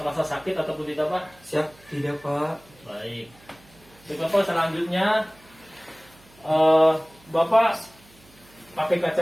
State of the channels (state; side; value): noise; right; hum, 27 dB below the sound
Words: sakit ataupun tidak Pak? Siap, tidak Pak. Baik. Baik Bapak, selanjutnya Bapak pakai